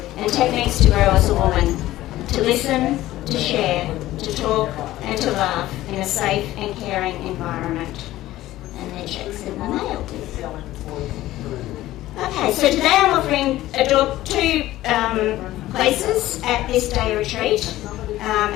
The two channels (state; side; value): quieter; right; 15.5 dB